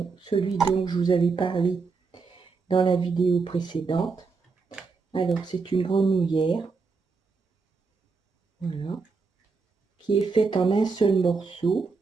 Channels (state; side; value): quieter; left; 4.6 dB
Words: celui dont je vous avais parlé dans la vidéo précédente. Alors c'est une grenouillère, voilà, qui est faite en un seul morceau.